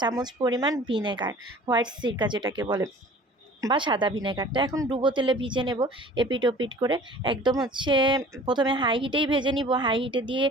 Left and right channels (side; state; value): both; normal; correlation 0.46